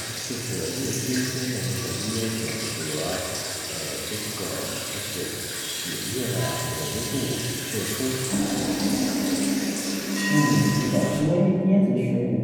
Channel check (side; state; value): both; identical; correlation 1.00